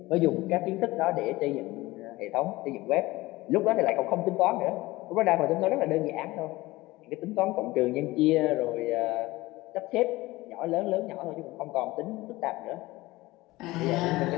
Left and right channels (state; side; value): quieter; right; 19.5 dB